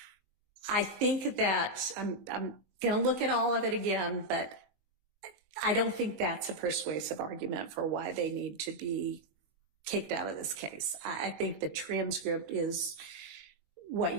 I think that I'm going to look at all of it again, but I don't think that's a persuasive argument for why they need to be kicked out of this case. I think the transcript is what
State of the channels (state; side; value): late; left; 20 ms